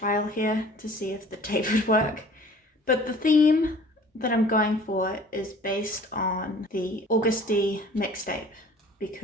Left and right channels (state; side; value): normal; both; correlation 0.49